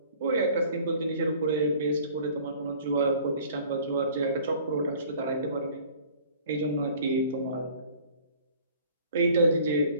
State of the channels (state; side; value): inverted; both; correlation -0.51